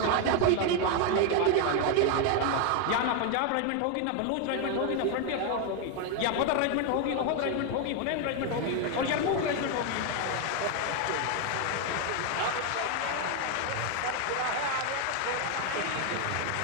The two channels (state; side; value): different; both; correlation 0.01